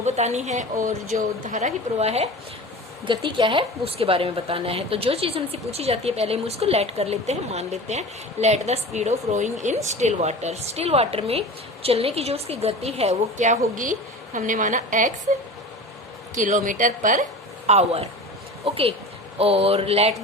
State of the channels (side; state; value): both; normal; correlation 0.34